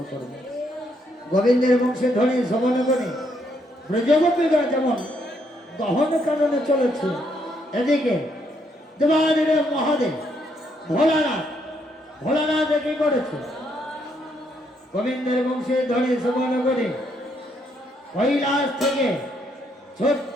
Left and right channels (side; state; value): both; normal; correlation 0.74